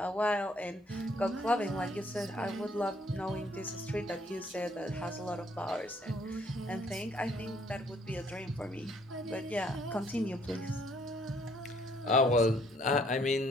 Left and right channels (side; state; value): both; normal; correlation 0.65